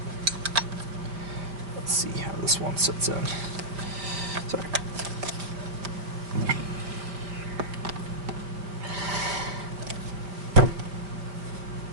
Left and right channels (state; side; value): late; left; 4.9 ms